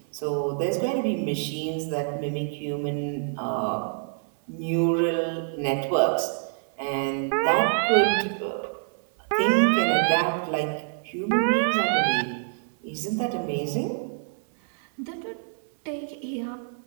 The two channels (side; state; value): left; silent; 60 dB below the other